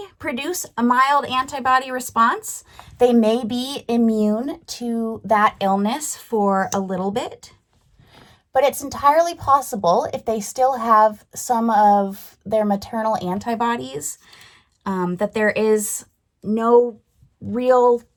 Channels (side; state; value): both; identical; correlation 1.00